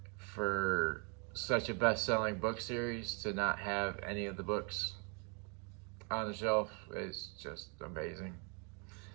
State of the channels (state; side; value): quieter; left; 35.9 dB